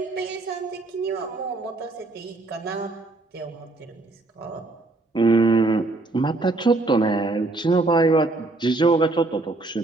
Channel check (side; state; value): left; quieter; 3.2 dB